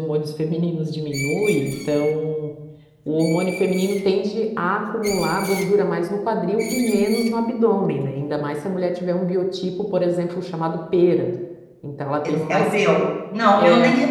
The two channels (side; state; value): both; identical; correlation 1.00